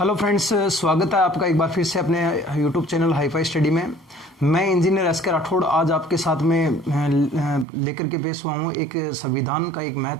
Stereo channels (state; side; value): drops out; left; at 7.7 s